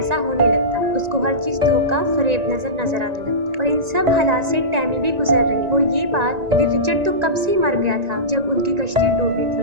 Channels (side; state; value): left; late; 1.9 ms